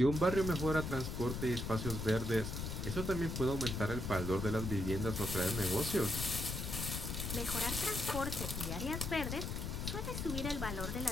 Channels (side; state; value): left; noise; rumble, 4 dB below the sound